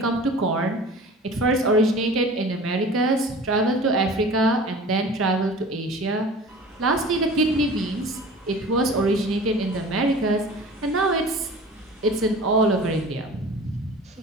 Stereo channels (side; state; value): both; normal; correlation 0.41